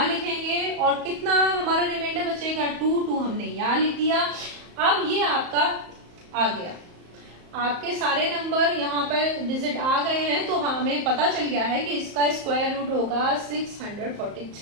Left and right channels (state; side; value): late; left; 34 ms